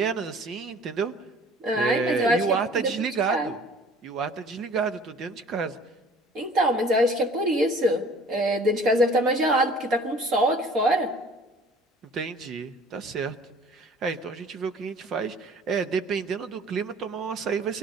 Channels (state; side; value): normal; both; correlation 0.50